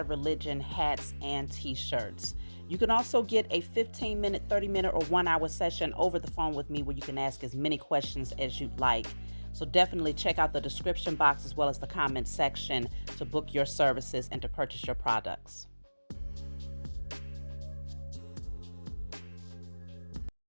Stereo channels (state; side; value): inverted; both; correlation -1.00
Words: Religion hats and t-shirts. You can also get a 15-minute, 30-minute, or 1-hour session over the phone with me where you can ask as many questions as you'd like. So definitely check out the description box as well as the comment section to book your services and to purchase your products.